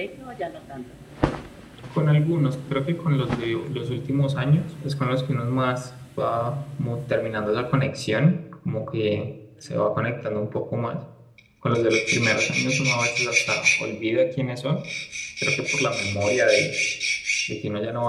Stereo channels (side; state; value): both; identical; correlation 1.00